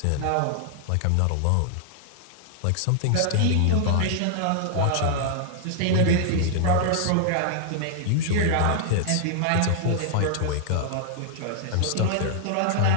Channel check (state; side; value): different; both; correlation -0.01